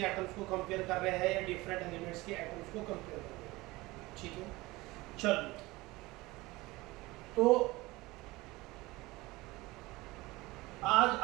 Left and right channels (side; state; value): left; quieter; 20.9 dB